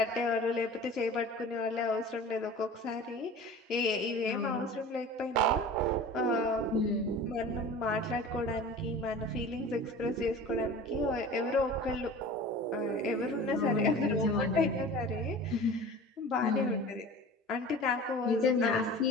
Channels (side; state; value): both; normal; correlation 0.39